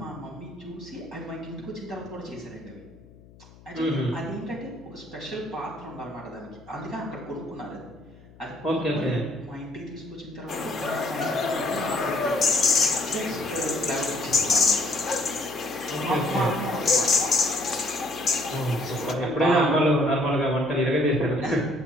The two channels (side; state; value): left; noise; hum, 23 dB below the sound